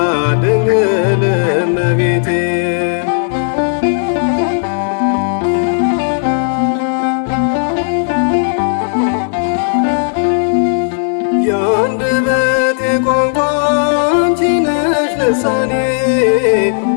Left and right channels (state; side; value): silent; right; digital silence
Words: ድንግል እመቤቴ የአንደበቴ ቋንቋ አንቺ ነሽ ልሳኔ